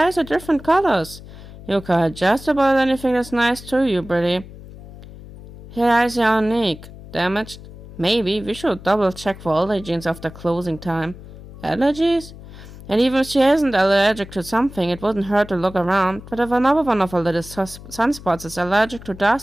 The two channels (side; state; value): left; noise; hum, 16 dB below the sound